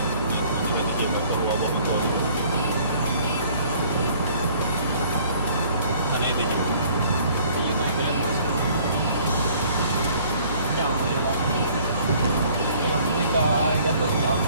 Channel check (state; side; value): inverted; both; correlation -0.56